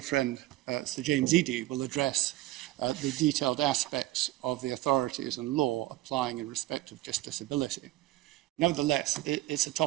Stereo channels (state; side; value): quieter; left; 16.6 dB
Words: friend, Sir James Eadie, will address the detailed aspects of the authorities and law applying in respect of justiciability. Nevertheless, it's a